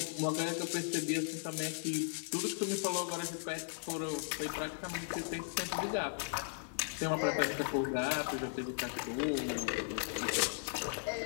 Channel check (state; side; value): silent; right; digital silence